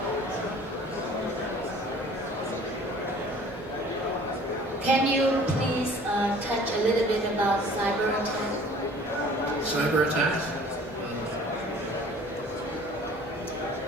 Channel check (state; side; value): normal; both; correlation 0.50